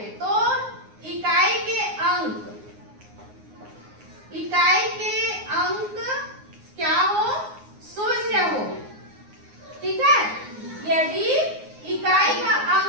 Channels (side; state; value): left; late; 9.6 ms